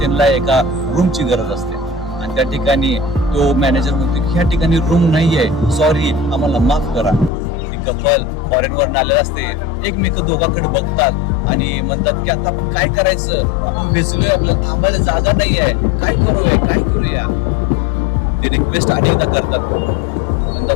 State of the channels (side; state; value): right; drops out; at 7.3 s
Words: एका रूमची गरज असते. आणि त्या ठिकाणी तो मॅनेजर म्हणतो की ह्या ठिकाणी रूम नाहीये, सॉरी, आम्हाला माफ करा. ती कपल फॉरेनवरून आलेलं असते, एकमेक दोघांकडे बघतात आणि म्हणतात की आता आपण काय करायचं, आपण भिजलोय, आपल्याला थांबायला जागा नाही आहे, काय करूया. ते रिक्वेस्ट अनेकदा करतात,